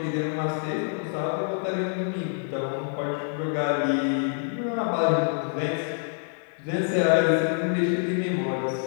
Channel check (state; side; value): silent; right; 61 dB below the other